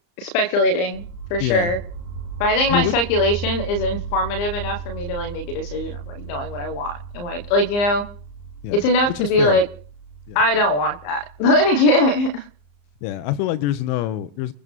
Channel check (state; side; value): late; right; 34 ms